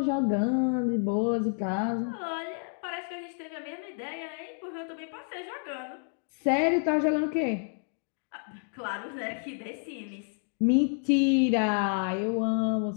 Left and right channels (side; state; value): right; silent; 58 dB below the other